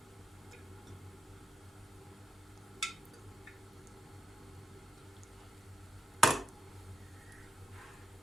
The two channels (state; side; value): normal; both; correlation 0.85